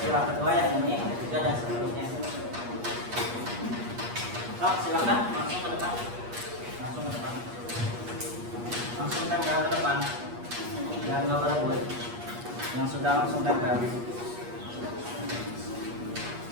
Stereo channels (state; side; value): late; left; 8.4 ms